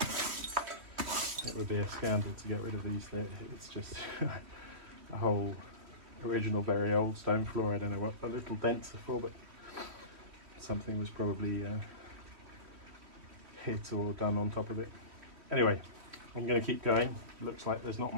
it would be a scandal to get rid of these. It's just a whole original very old stone floor. I don't know what the little dents are for, but something was probably hit or done on top of it. Anyway, I'm going to keep going. Looks like there's not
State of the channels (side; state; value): left; late; 3.1 ms